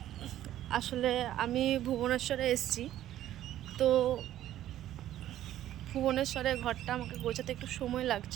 আসলে আমি ভুবনেশ্বরে এসেছি, তো ভুবনেশ্বরে ঘরটা আমাকে গোছাতে একটু সময়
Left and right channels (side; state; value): left; quieter; 12.7 dB